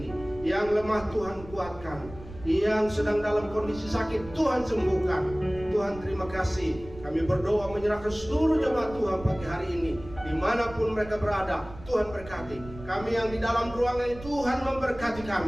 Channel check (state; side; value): noise; right; rumble, 16 dB below the sound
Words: Yang lemah Tuhan kuatkan, yang sedang dalam kondisi sakit Tuhan sembuhkan. Tuhan terima kasih. Kami berdoa menyerahkan seluruh jemaat Tuhan pagi hari ini, dimanapun mereka berada. Tuhan berkati kami yang di dalam ruangan ini. Tuhan memberkati